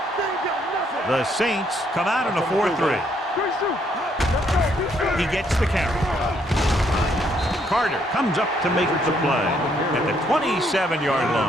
The Saints come out in a 4-3. He gets the carry. Carter comes up to make the play at the 27-yard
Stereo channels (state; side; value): normal; both; correlation 0.70